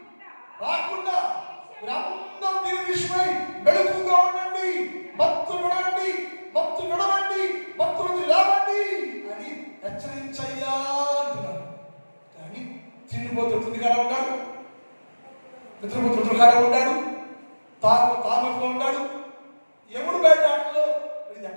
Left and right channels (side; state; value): both; inverted; correlation -1.00